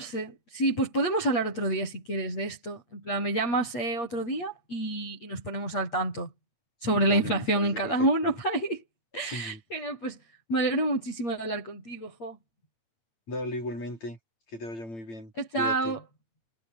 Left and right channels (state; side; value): late; right; 8.5 ms